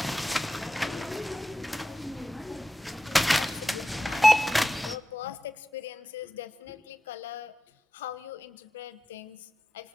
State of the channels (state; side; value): normal; both; correlation 0.92